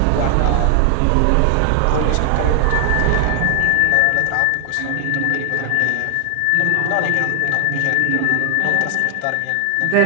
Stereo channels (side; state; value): both; different; correlation 0.00